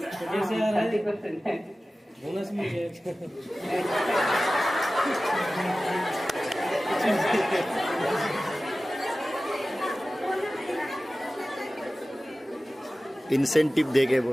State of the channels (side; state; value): both; normal; correlation 0.96